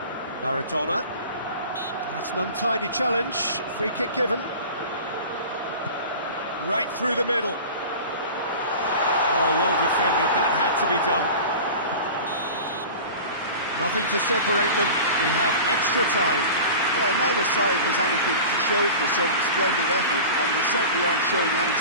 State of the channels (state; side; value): inverted; both; correlation -0.36